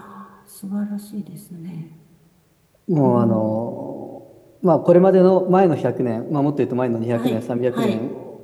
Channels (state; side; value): identical; both; correlation 1.00